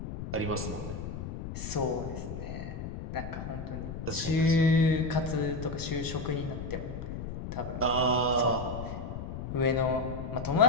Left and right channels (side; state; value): left; noise; rumble, 7 dB below the sound